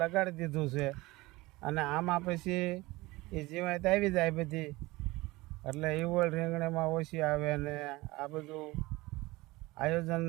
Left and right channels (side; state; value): left; quieter; 20.8 dB